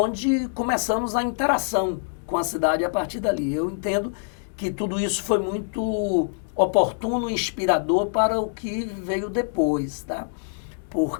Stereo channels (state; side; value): silent; right; digital silence